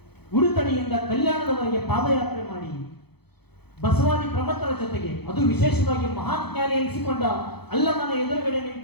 ಉಡುತಡಿಯಿಂದ ಕಲ್ಯಾಣದವರೆಗೆ ಪಾದಯಾತ್ರೆ ಮಾಡಿ ಬಸವಾದಿ ಪ್ರಮಥರ ಜೊತೆಗೆ, ಅದು ವಿಶೇಷವಾಗಿ ಮಹಾನ್ ಜ್ಞಾನಿ ಎನಿಸಿಕೊಂಡ ಅಲ್ಲಮನ ಎದುರುಗಡೆ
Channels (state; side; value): late; right; 0.98 ms